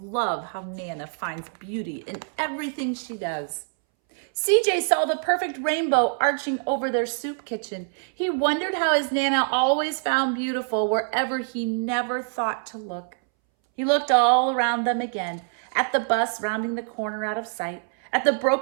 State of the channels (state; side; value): silent; left; 62 dB below the other